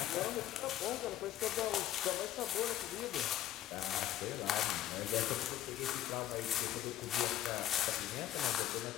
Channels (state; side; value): quieter; right; 12.7 dB